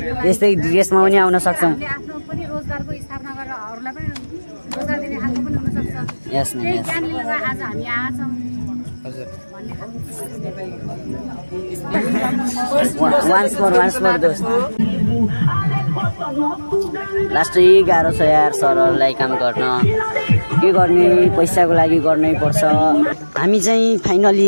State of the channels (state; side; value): inverted; both; correlation -1.00